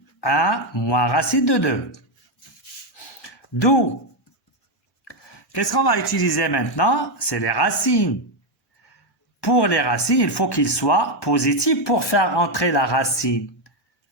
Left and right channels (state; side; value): normal; both; correlation 0.06